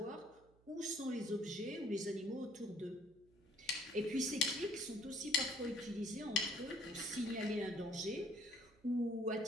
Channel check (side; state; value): right; noise; hum, 29 dB below the sound